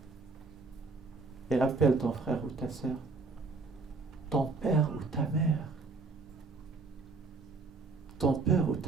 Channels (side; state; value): left; quieter; 3.9 dB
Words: et appelle ton frère ou ta sœur, ton père ou ta mère.